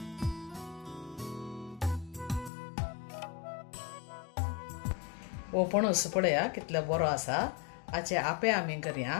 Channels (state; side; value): drops out; right; at 2.5 s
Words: हो पणस पळया कितले बरो आसा. हाचे आपे आमी करया.